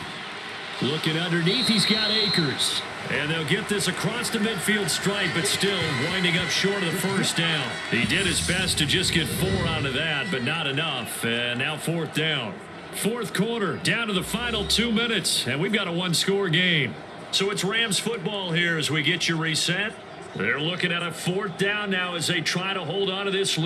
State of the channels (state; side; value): identical; both; correlation 1.00